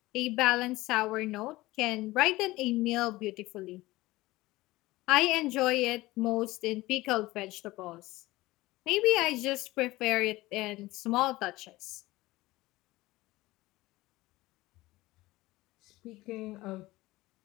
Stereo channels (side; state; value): right; quieter; 19.0 dB